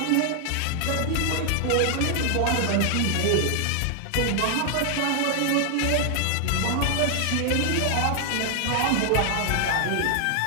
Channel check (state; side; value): different; both; correlation 0.00